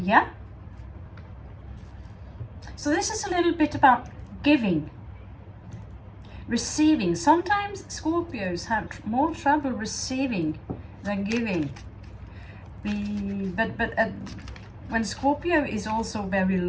Yeah? So this is a little bit about giving, receiving. Sometimes Scorpios have more trouble receiving than giving. But when Scorpio is also very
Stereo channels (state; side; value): identical; both; correlation 1.00